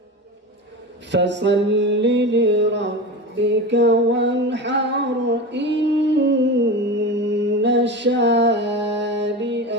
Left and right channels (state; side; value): normal; both; correlation 0.27